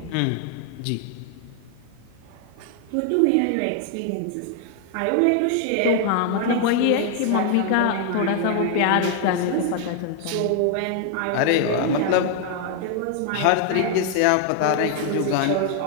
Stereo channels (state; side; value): different; both; correlation 0.00